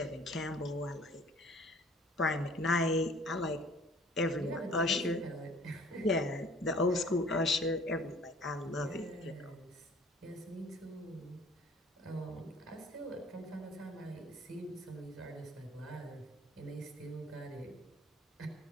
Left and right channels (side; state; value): both; normal; correlation 0.53